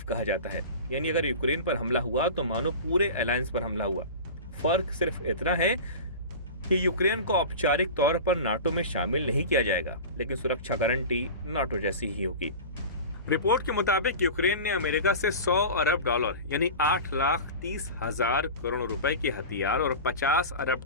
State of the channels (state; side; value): inverted; both; correlation -0.31